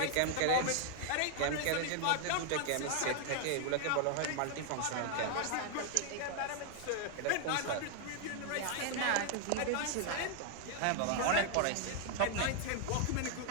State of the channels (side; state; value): both; different; correlation 0.00